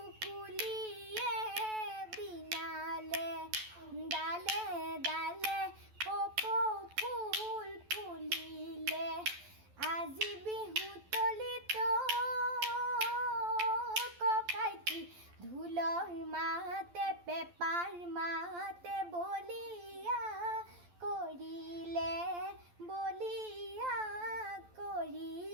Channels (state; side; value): late; left; 12 ms